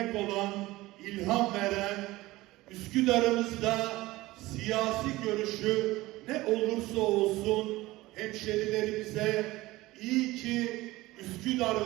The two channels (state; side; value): quieter; left; 18.8 dB